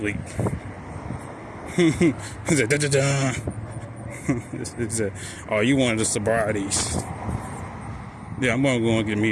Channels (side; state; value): both; identical; correlation 1.00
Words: Oh, you wanted the sobrieties? Yeah, I'm gonna go and get